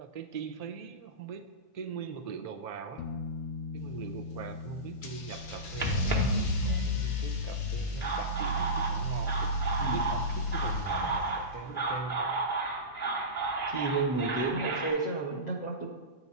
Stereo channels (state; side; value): late; right; 8.6 ms